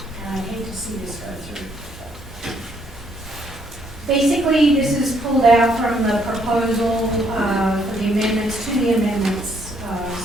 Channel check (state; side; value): normal; both; correlation 0.70